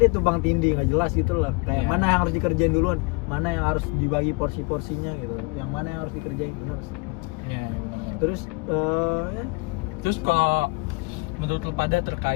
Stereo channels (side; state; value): right; quieter; 27.3 dB